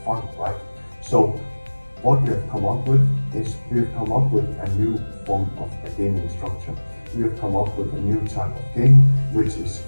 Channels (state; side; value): inverted; both; correlation -1.00